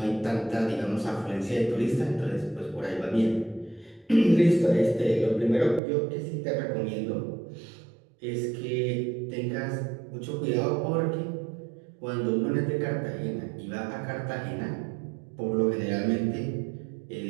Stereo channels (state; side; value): drops out; left; at 5.8 s